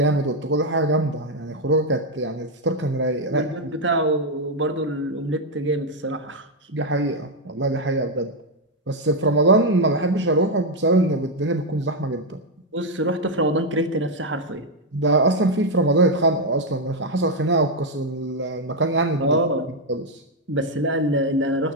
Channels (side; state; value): both; normal; correlation 0.02